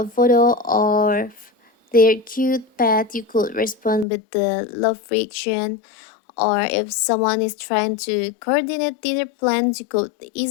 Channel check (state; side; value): drops out; right; at 4.0 s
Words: photo or their cute pet, you could respond with the love reaction. Or if someone is trying to coordinate dinner plans, you could